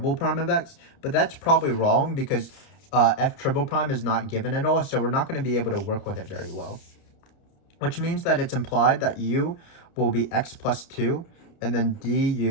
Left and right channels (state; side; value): late; right; 30 ms